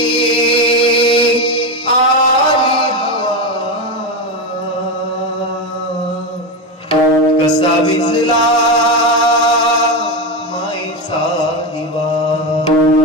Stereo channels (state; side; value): normal; both; correlation 0.14